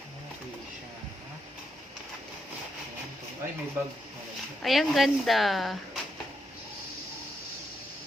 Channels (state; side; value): normal; both; correlation 0.81